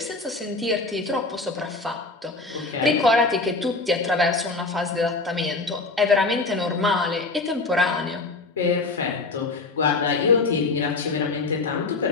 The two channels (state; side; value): quieter; right; 3.6 dB